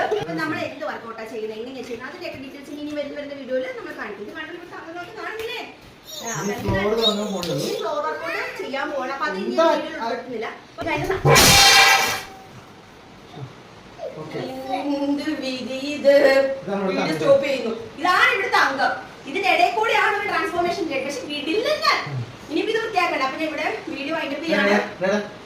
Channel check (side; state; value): both; identical; correlation 1.00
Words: നമ്മൾ എന്ത് വർക്കൗട്ടാണ് ചെയ്യുന്നത്, എങ്ങനെയാണ് ചെയ്യുന്നത്, അതിന്റെയൊക്കെ ഡീറ്റെയിൽസ് ഇനി വരുന്ന വീഡിയോയിൽ നമ്മൾ കാണിക്കും. കാണില്ലേ ഫ്ലോർ വർക്കൗട്ട് ചെയ്യാൻ പോകണം. അപ്പൊ അത് ഇനി ഉൾപ്പെടുത്തുന്നില്ല. സ്റ്റോപ്പ് ചെയ്യുന്നു. ഇതാണ് ഇവിടുത്തെ അംഗം. ഇതിന്റെ ഇടയിൽ കൂടെയാണ് ഒരു ട്രാൻസ്ഫോർമേഷൻ ചെയ്യുന്നത്. പക്ഷെ വീട്ടിൽ ഇനിയിപ്പോ ഇത് വൃത്തിയാക്കണ്ട. അപ്പൊ ഞാൻ ഇവിടെ വീഡിയോ വൈൻഡപ്പ് ചെയ്യാണ്.